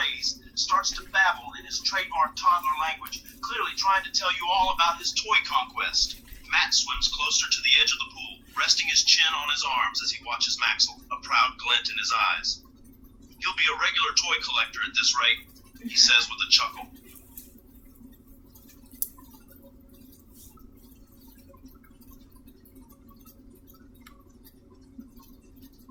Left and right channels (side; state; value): both; identical; correlation 1.00